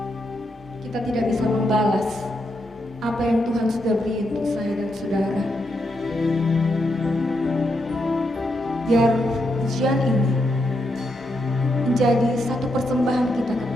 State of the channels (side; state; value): both; normal; correlation 0.82